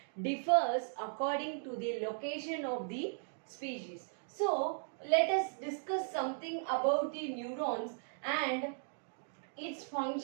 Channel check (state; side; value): silent; left; digital silence